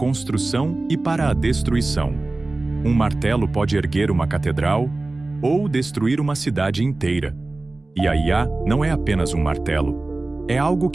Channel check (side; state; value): left; quieter; 3.1 dB